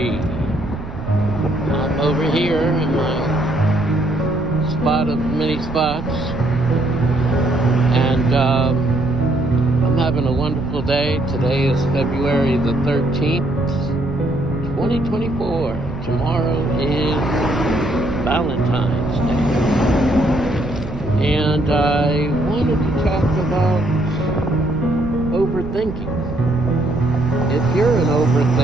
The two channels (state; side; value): noise; right; rumble, 10 dB below the sound